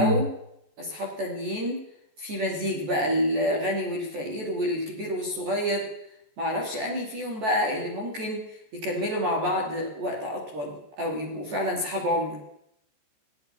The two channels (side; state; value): left; late; 14 ms